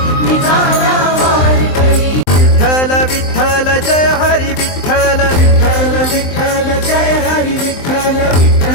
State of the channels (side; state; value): right; late; 23 ms